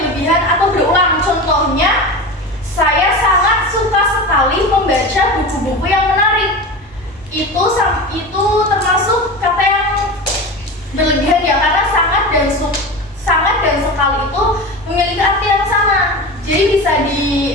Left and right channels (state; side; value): normal; both; correlation 0.27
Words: atau berulang. Contohnya, saya sangat suka sekali membaca buku-buku yang menarik. Itu termasuk kata yang berlebihan ya, karena sangat dan sekali itu memiliki arti yang sama. Jadi bisa